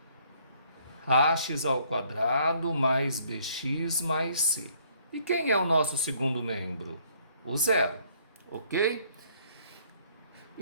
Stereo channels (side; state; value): both; inverted; correlation -0.63